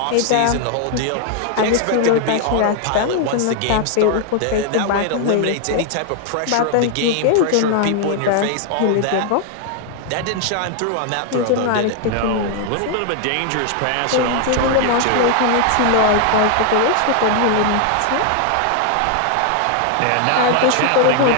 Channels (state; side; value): different; both; correlation 0.00